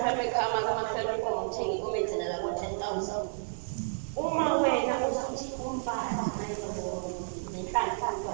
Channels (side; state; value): left; silent; digital silence